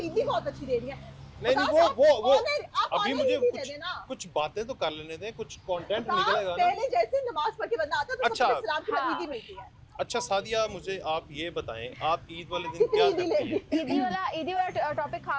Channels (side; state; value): both; identical; correlation 1.00